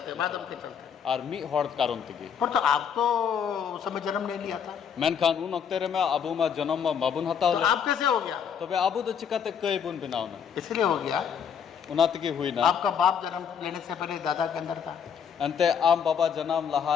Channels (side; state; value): right; quieter; 7.5 dB